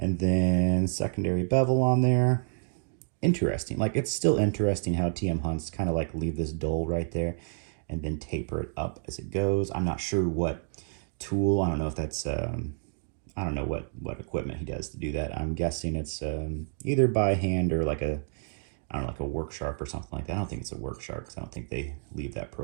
then secondary bevel on there. Interesting. Like it's still interesting how TM Hunts kind of like leave this dull right there and then taper it up as it goes. I'm not sure what tool. I don't know if that's I don't know what equipment he does to do that. I'm guessing it's either by hand or like a, I don't know, like a work sharp or something like that. I don't think it's a work sharp because I don't think they leave that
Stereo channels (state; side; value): silent; left; digital silence